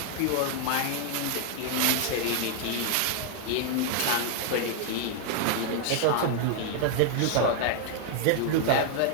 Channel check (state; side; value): different; both; correlation 0.00